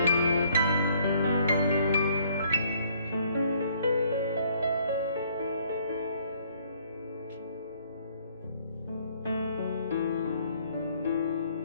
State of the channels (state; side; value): inverted; both; correlation -0.64